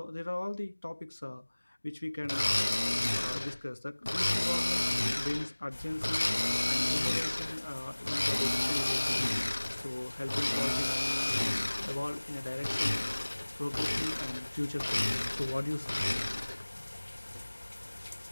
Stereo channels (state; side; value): inverted; both; correlation -1.00